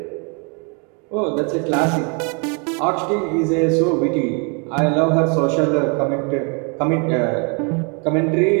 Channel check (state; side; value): quieter; left; 35.0 dB